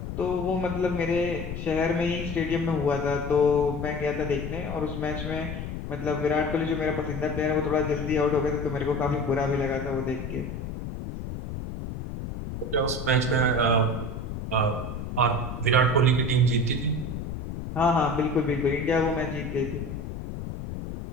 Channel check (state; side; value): noise; left; rumble, 7 dB below the sound